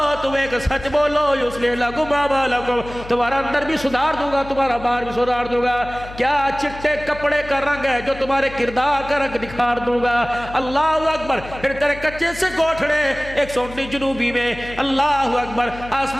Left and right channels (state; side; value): noise; left; hum, 15 dB below the sound